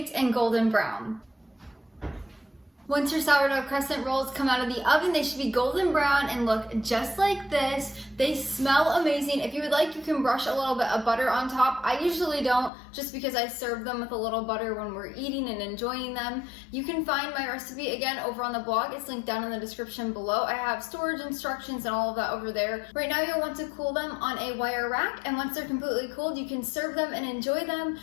and golden brown. Once your sourdough crescent rolls come out of the oven, they should be golden brown and look just like this. They smell amazing. If you would like, you can brush a little bit of butter on top. I usually don't, just because I serve them with a little butter when we're eating and enjoying them. You can find my recipe again over on the blog. It's linked down in the description below. I have storage instructions and all of that over there. Right now you'll want to cool them on a wire rack, and once they're completely cooled, you can serve them and enjoy them.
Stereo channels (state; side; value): drops out; right; at 12.7 s